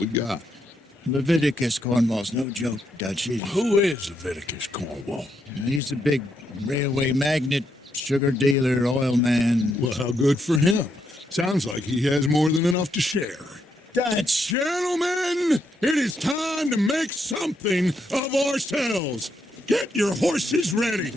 got? Leviticus Cornwall's no joke, Dutch. Who is Leviticus Cornwall? He's a big railway magnate, sugar dealer, oil man. Well, how good for him. Sounds like he has more than enough to share. Dutch! Gentlemen, it is time to make something of ourselves. Get your horses ready.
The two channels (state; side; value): normal; both; correlation 0.78